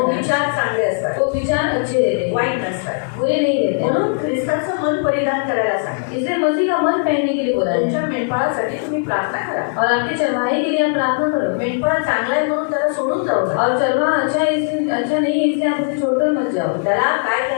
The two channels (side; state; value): right; silent; 67 dB below the other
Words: है विचार चांगले असतात, तो विचार अच्छे रहते हैं, वाईट नसतात। बुरे नहीं रहते। म्हणून ख्रिस्ताचं मन परिधान करायला सांगा। इसलिए मसीह का मन पहनने के लिए बोला तुमच्या है। मेंढपाळासाठी तुम्ही प्रार्थना करा। और आपके चरवाहे के लिए आप प्रार्थना करो। मेंढपाळ चांगला आहे म्हणून त्याला सोडून जाऊ नका। और चरवाहा अच्छा है इसलिए अच्छा नहीं है इसलिए आप उसे छोड़कर मत जाओ। त्याला काय